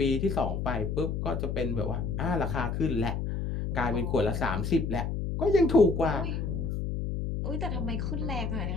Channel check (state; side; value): noise; left; hum, 2 dB below the sound